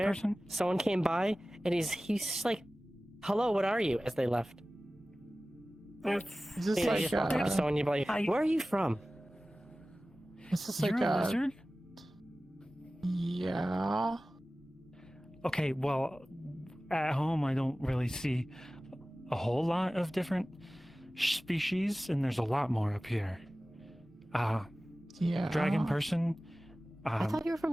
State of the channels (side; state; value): both; normal; correlation 0.97